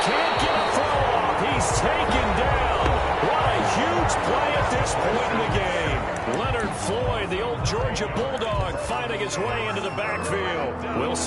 can't get a throw off. He's taken down. What a huge play at this point in the game. Leonard Floyd, the old Georgia Bulldog, finding his way into the backfield.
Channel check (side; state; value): both; identical; correlation 1.00